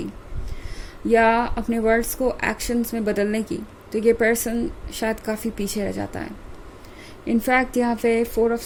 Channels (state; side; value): identical; both; correlation 1.00